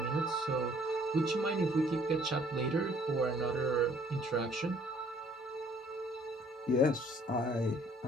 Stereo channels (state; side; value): normal; both; correlation 0.59